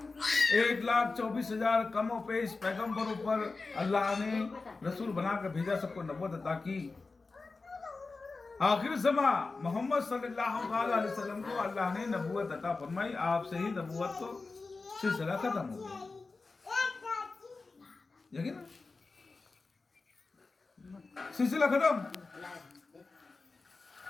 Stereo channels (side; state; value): right; quieter; 3.9 dB